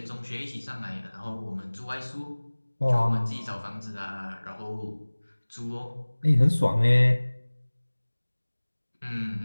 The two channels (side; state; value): both; inverted; correlation -1.00